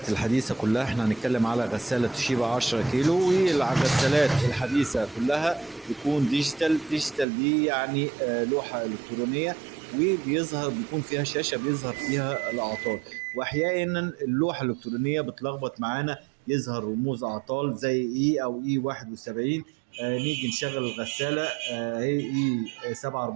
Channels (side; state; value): left; drops out; at 7.2 s